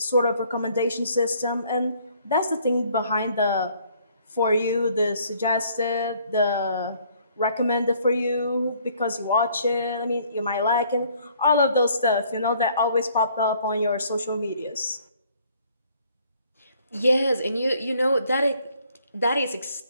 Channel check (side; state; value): both; inverted; correlation -0.62